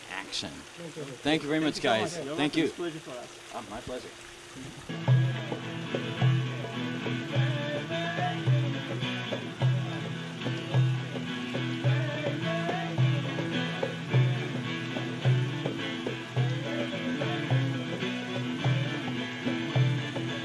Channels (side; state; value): both; identical; correlation 1.00